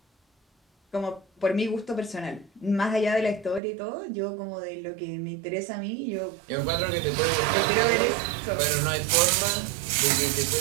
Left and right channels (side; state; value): left; drops out; at 3.6 s